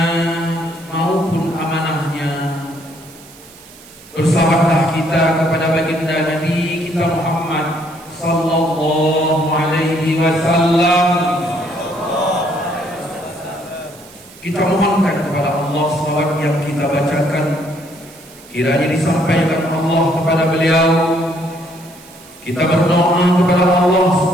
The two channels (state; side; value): noise; right; hiss, 22 dB below the sound